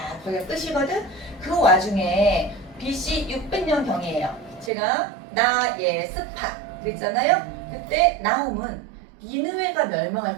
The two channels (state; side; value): drops out; left; at 4.7 s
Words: 거기가 끝이거든. 그 와중에 BC 600년 경이에요. 제가 나예스파 그랬잖아요. 그때 나움은 니느웨가